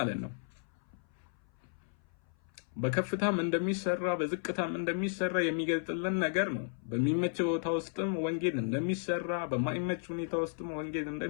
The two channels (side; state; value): right; silent; 55 dB below the other